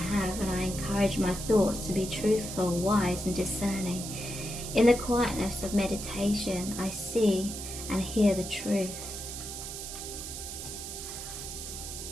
and I encourage my thoughts to be truthful, wise and discerning. In the quietness of meditation, I see and hear the truth.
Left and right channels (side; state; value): right; noise; hiss, 8 dB below the sound